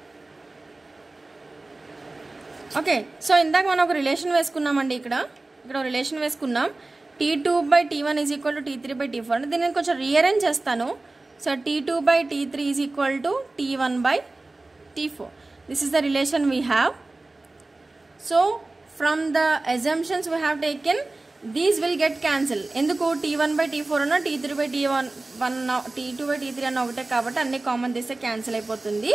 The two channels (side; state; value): left; quieter; 3.1 dB